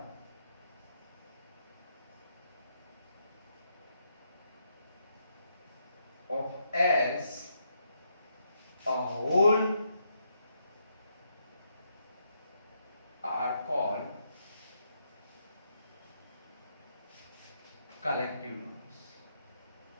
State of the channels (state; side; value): inverted; both; correlation -0.78